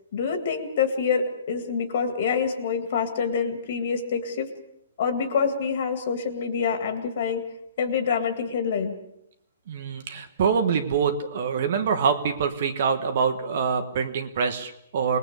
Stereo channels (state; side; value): inverted; both; correlation -0.49